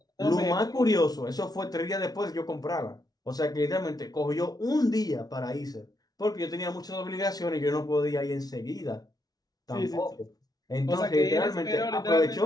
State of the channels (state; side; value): late; right; 0.19 ms